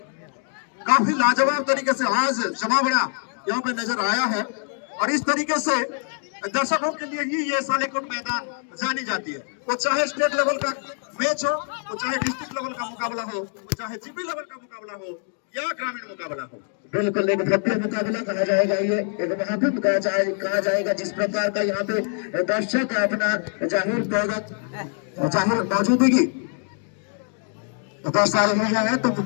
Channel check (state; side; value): silent; right; 55 dB below the other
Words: काफी लाजवाब तरीके से आज जमावड़ा यहाँ पे नजर आया है। और इस तरीके से दर्शकों के लिए ही ये सालेकोट मैदान जानी जाती है, वो चाहे स्टेट लेवल का मैच हो, वो चाहे डिस्ट्रिक्ट लेवल का मुकाबला हो, वो चाहे जीपी लेवल का मुकाबला हो या ग्रामीण मुकाबला हो। बिल्कुल एक भव्य मुकाबला कहा जाएगा, ये एक महाकुंभ कहा जाएगा, जिस प्रकार का यहाँ पे दर्शक अपना जाहिर मौजूदगी दर्शा रहे हैं, तो